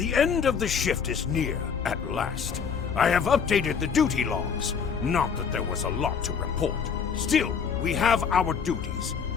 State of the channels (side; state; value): right; quieter; 6.5 dB